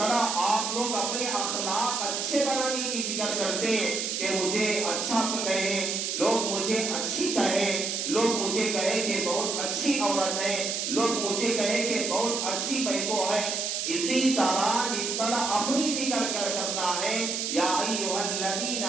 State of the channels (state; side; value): noise; right; hiss, 1 dB below the sound